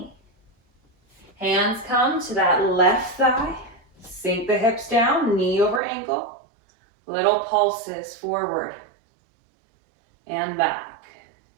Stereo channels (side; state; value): left; drops out; at 5.8 s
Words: Hands come to that left thigh. Sink the hips down, knee over ankle. Little pulses forward and back.